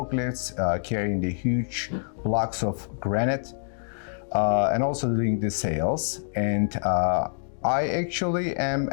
carrying the huge blocks of granite, and also doing the sales. And I actually am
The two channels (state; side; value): silent; right; digital silence